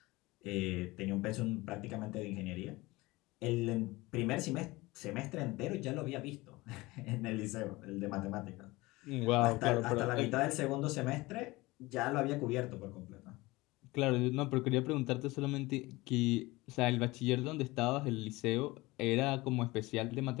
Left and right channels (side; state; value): right; quieter; 21.2 dB